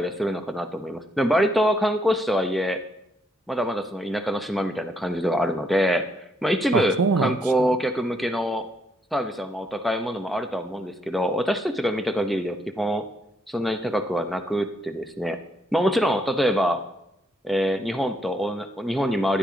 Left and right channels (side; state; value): both; normal; correlation 0.74